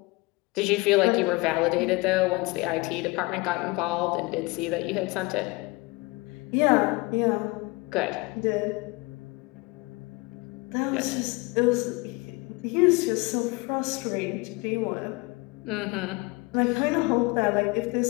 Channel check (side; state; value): right; quieter; 24.8 dB